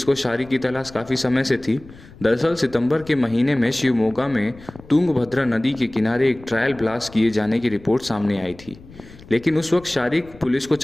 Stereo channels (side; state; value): left; noise; rumble, 21 dB below the sound